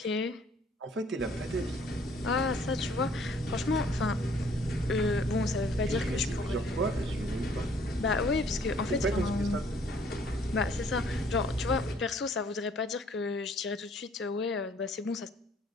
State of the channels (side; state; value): both; normal; correlation 0.60